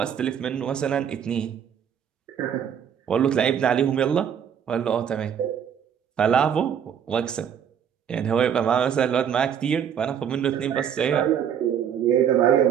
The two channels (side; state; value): left; quieter; 8.5 dB